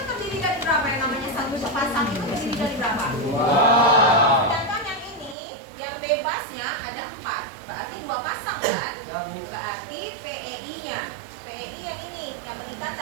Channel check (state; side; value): drops out; left; at 5.4 s